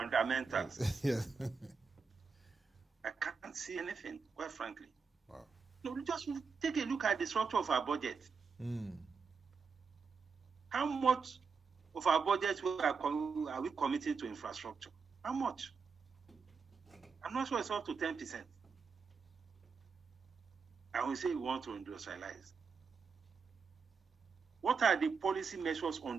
Yes. I can't see anything, quite frankly. Wow. No, just take a look at the structure of our budget. How much of our budget are we committing to infrastructure? How much? I'm not sure it's up to 10%. And we say we want to industrialize. What are the policy measures on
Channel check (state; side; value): quieter; left; 5.3 dB